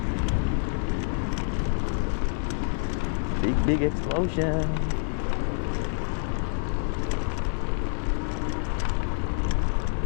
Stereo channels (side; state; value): right; silent; digital silence